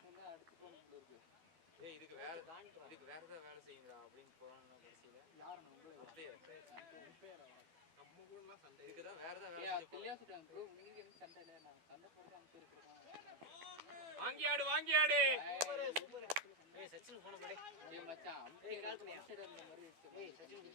என்ன அடுத்து போகணும் இருக்கு ஏய் இதுக்கு வேற ஏதாவது வேலை செய்யுங்கடா அப்படின்னு போறாங்கன்னா கடைசியில யாரண்ணா உங்களே நம்ம கூடலாம் சண்டை இதுக்கு தான் வேற ஏதாவது வேலை ஏய் செஞ்சு கிளியா சொல்றாங்க ப்ரோ உங்களுக்கு என்ன சண்டை இல்ல நான் சண்டை போடுறது அங்க இருக்கறோம் வாங்கி ஆடு சூப்பர் ஏய் சச்சின் போன போடே ஏய் மச்சான் அம்பையர் கால்ஸ் அந்த மாதிரி ஏய் சச்சின்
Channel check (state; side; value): late; left; 12 ms